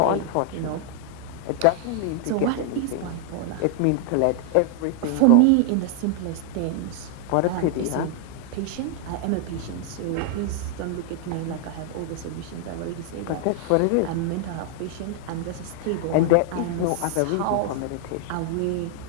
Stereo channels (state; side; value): different; both; correlation 0.00